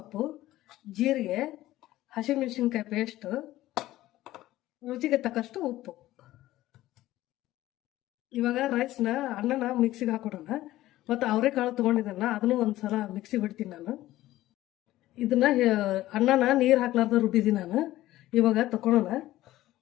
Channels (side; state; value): right; quieter; 15.6 dB